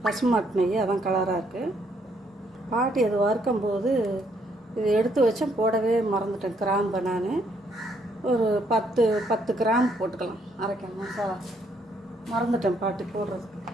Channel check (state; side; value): normal; both; correlation 0.70